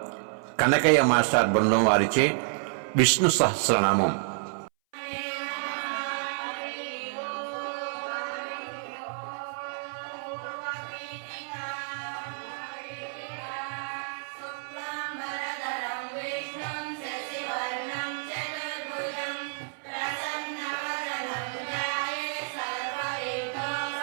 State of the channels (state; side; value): silent; left; 58 dB below the other